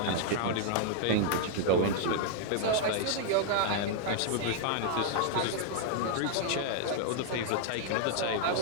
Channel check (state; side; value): different; both; correlation 0.00